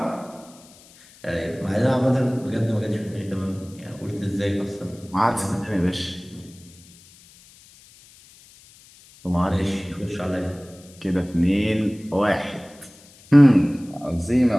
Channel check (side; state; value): left; noise; hiss, 25 dB below the sound